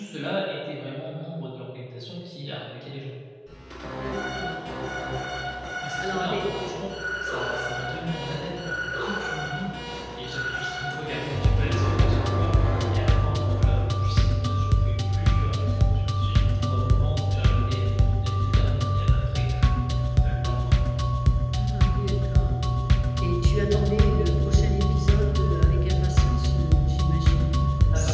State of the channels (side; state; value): both; identical; correlation 1.00